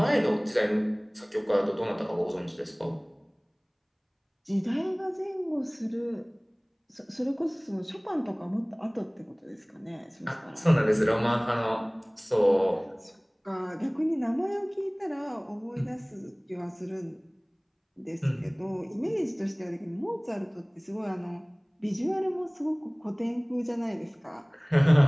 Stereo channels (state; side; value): identical; both; correlation 1.00